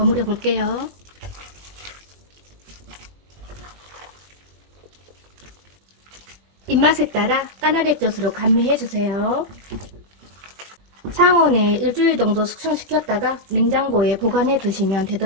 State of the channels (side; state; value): left; late; 21 ms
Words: 볼게요. 입맛에 따라 까나리액젓으로 감미해주세요. 상온에 일주일 정도 숙성시켰다가 냉장고에 보관해 두시면